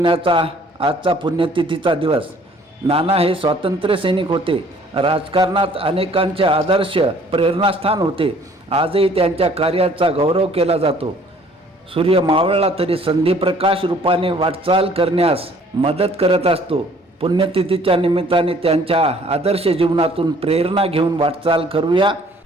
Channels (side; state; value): both; normal; correlation 0.57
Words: आजचा पुण्यतिथीचा दिवस. नाना हे स्वातंत्र्य सैनिक होते. राजकारणात अनेकांचे आदर्श प्रेरणास्थान होते. आजही त्यांच्या कार्याचा गौरव केला जातो. सूर्य मावळला तरी संधिप्रकाश रूपाने वाटचाल करण्यास मदत करत असतो. पुण्यतिथीच्या निमित्ताने त्यांच्या आदर्श जीवनातून प्रेरणा घेऊन वाटचाल करूया.